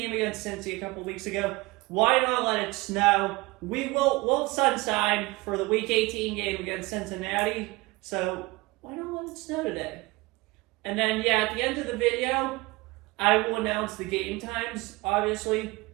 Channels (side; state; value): left; quieter; 22.5 dB